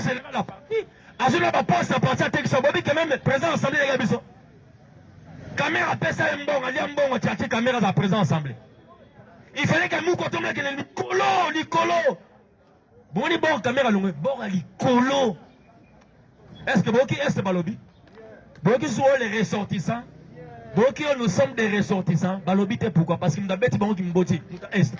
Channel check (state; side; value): identical; both; correlation 1.00